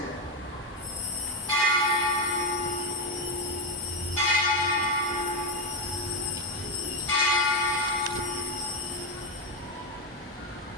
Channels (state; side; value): normal; both; correlation 0.09